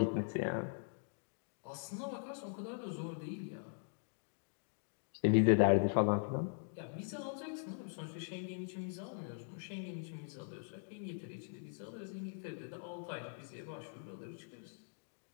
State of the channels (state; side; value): silent; right; digital silence